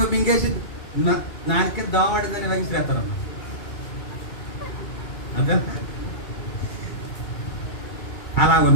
మింగేసి నాకే దోమడిందని వహిస్తారన్న. అదే అలా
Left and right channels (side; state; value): right; late; 2.3 ms